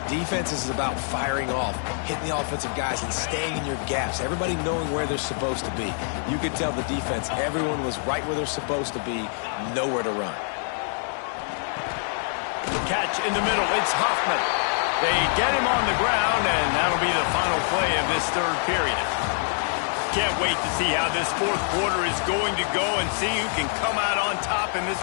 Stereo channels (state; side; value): silent; right; 61 dB below the other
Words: Defense is about firing off, hitting the offensive guys, and staying in your gaps. Everybody knowing where they're supposed to be. You could tell the defense, everyone was right where they're supposed to be, nowhere to run. catch in the middle. It's Hoffman. They get him on the ground, and that'll be the final play of this third period. Can't wait to see how this fourth quarter is going to go and see who can come out on top in this